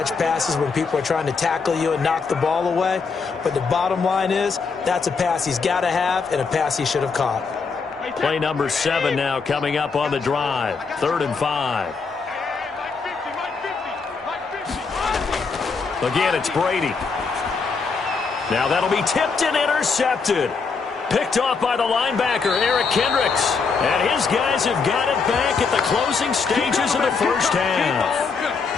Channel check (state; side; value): quieter; right; 5.0 dB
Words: passes when people are trying to tackle you and knock the ball away, but the bottom line is that's a pass he's got to have and a pass he should have caught. Play number 7 now coming up on the drive. 3rd and 5. Again, it's Brady. Now that'll be tipped and intercepted. Picked off by the linebacker, Eric Kendricks. And his guys have got it back at the closing stages of the first